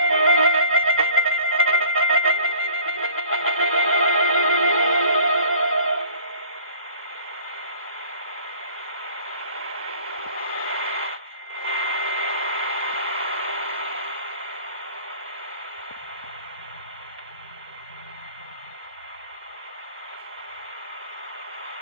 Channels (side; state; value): both; inverted; correlation -0.48